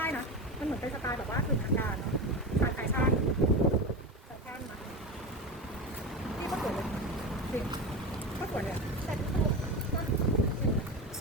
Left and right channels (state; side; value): normal; both; correlation 0.23